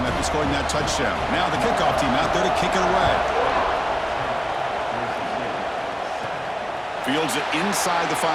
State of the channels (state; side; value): identical; both; correlation 1.00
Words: after scoring that touchdown. Now the kickoff team out there to kick it away. Fields it inside the